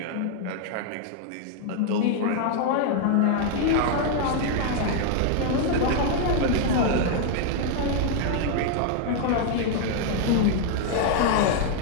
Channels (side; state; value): both; different; correlation 0.00